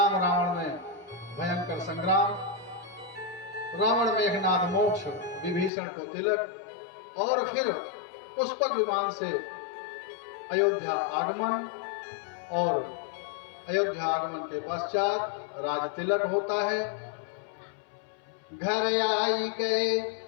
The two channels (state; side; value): drops out; right; at 5.7 s